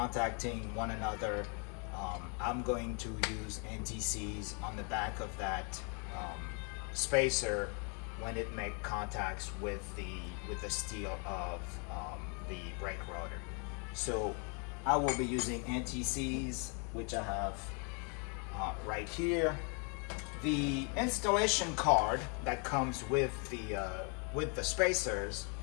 one another. I'm going to use NTCs on the back of that spacer when it makes contacts with the steel of the brake rotor. So I will be using NTCs, which I have right here. The installation card that comes with the spacers,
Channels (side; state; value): right; quieter; 36.8 dB